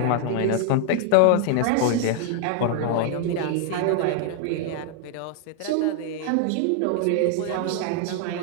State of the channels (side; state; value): both; different; correlation 0.00